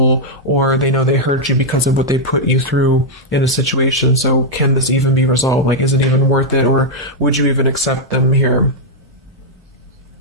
Or they know they hurt you because of what they put you through in a situation, so can this even be resolved? Like, is it even worth it, or would you even accept them here?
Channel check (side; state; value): both; normal; correlation -0.03